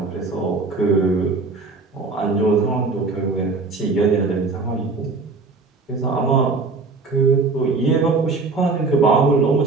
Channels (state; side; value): quieter; left; 4.0 dB